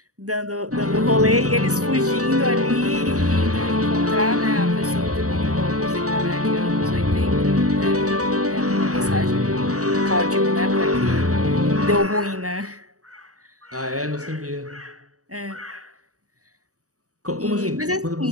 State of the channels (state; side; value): late; left; 0.66 ms